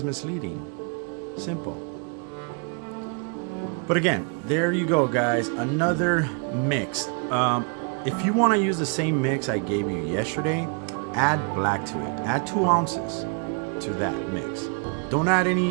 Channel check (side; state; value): left; quieter; 38.0 dB